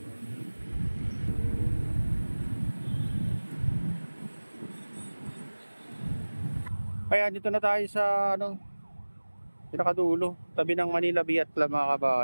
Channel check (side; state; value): both; inverted; correlation -1.00